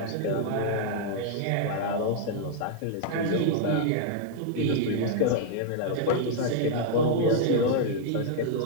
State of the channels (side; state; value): both; different; correlation -0.01